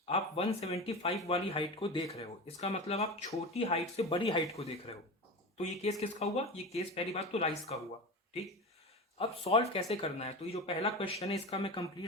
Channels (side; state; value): both; normal; correlation 0.27